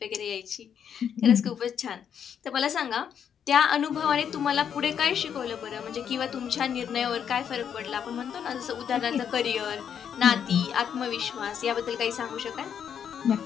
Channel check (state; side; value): quieter; right; 8.2 dB